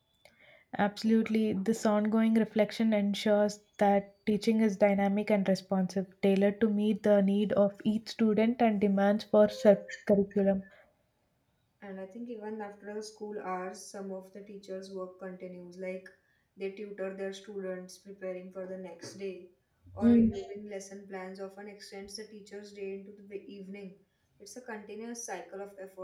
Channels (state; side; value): identical; both; correlation 1.00